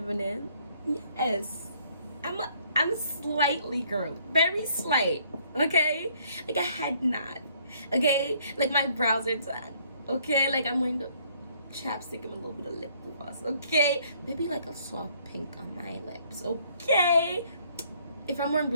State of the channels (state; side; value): inverted; both; correlation -0.64